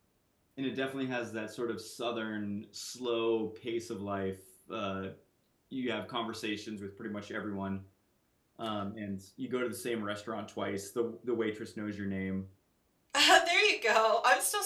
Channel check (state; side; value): identical; both; correlation 1.00